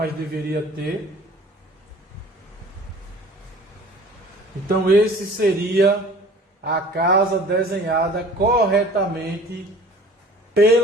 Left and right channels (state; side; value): normal; both; correlation 0.47